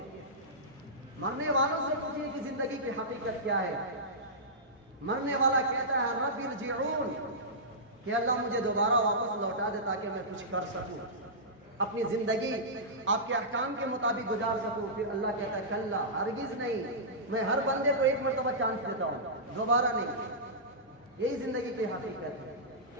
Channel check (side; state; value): both; normal; correlation -0.16